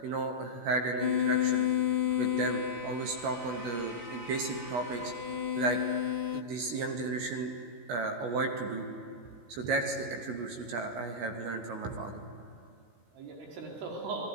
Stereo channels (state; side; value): late; left; 17 ms